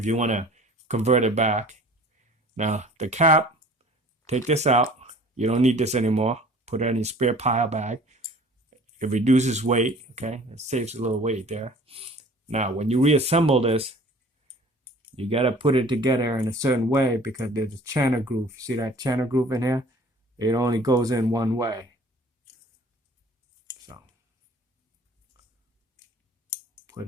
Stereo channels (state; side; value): normal; both; correlation 0.49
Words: you want to convert it back. Now, the cap, take this out. You don't need this anymore. Put it in your spare pile bag. It reduces weight, okay? It saves a little weight there. Now, when you reassemble this, you got to put it together in a certain way because there's a channel groove. See that channel groove in here? It only goes in one way.